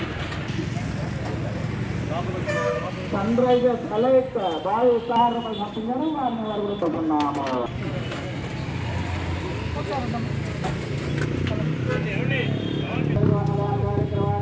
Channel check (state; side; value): identical; both; correlation 1.00